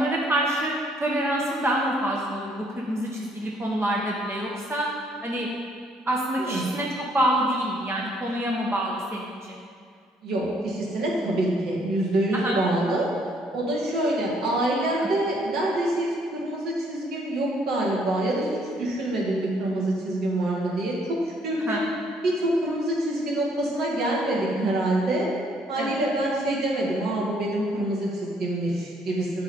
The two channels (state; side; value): normal; both; correlation 0.66